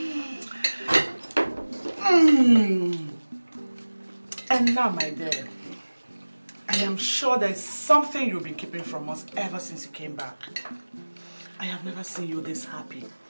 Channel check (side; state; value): both; inverted; correlation -1.00